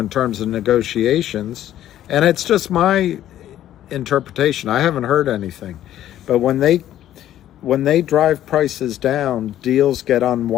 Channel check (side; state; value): right; quieter; 12.2 dB